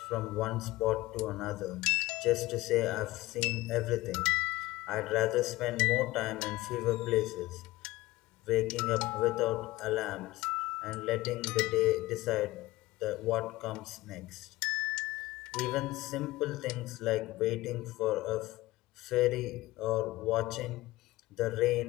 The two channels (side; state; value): right; quieter; 18.6 dB